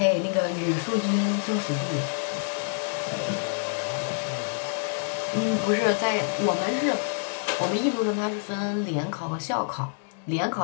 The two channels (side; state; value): right; silent; 60 dB below the other